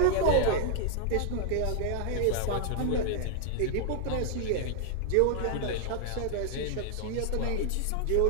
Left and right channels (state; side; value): different; both; correlation 0.00